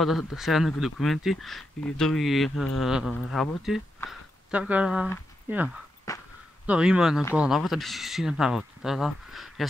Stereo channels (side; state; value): both; normal; correlation 0.85